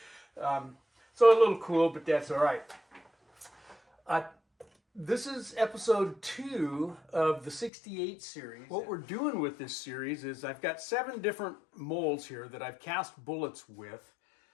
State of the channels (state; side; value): drops out; right; at 7.7 s